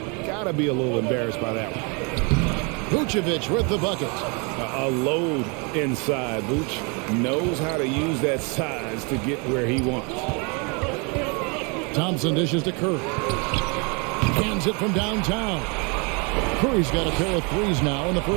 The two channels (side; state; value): left; quieter; 32.6 dB